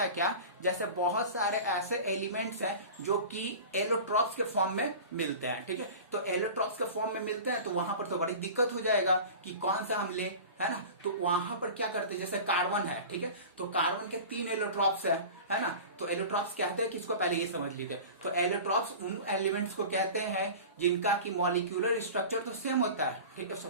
है क्या, जैसे बहुत सारे ऐसे एलिमेंट्स हैं जो कि एलोट्रॉप्स के फॉर्म में मिलते हैं, ठीक है। तो एलोट्रॉप्स के फॉर्म में मिलते हैं, तो वहां पर तो बड़ी दिक्कत हो जाएगा कि कौन सा हम ले, है ना। तो वहां पर क्या करते हैं, जैसे कार्बन है, ठीक है, तो कार्बन के 3 एलोट्रॉप्स है ना। तो एलोट्रॉप्स कहते हैं किसको, पहले ये समझ लीजिए। तो एलोट्रॉप्स उन एलिमेंट्स को कहते हैं जिनका की मॉलिक्यूलर स्ट्रक्चर तो सेम होता है, ठीक है,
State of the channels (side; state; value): both; inverted; correlation -0.36